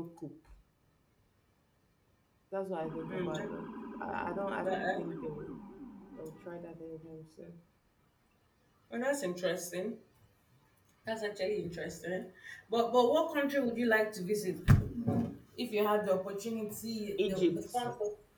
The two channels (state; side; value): identical; both; correlation 1.00